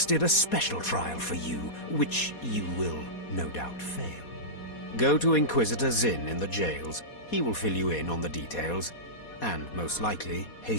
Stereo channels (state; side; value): late; right; 4.2 ms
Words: a special trial for you, which you will no doubt fail. Go to Inquisitor Zinn in the jails. He will fill you in on the details, and most likely